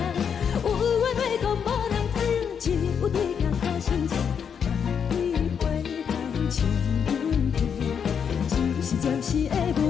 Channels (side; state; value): right; quieter; 7.2 dB